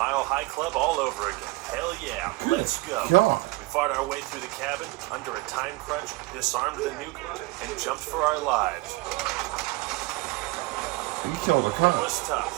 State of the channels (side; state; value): left; quieter; 22.1 dB